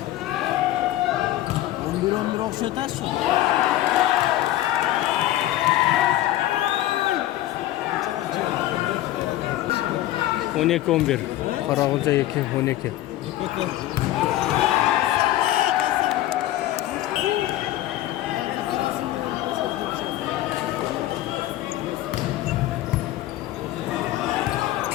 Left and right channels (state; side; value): quieter; right; 14.8 dB